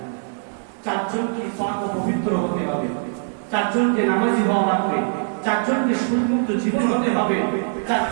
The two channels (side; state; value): left; silent; digital silence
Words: 4 জনকে পাক ও পবিত্র হতে হবে, 4 জনকে নামাজি হওয়া লাগবে, 4 জনকে সুন্নত জীবন হতে হবে। 4